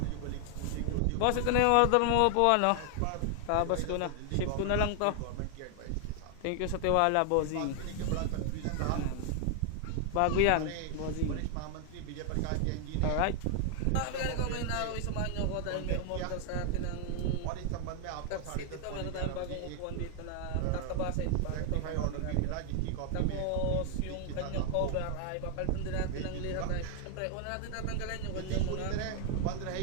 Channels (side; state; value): both; different; correlation 0.00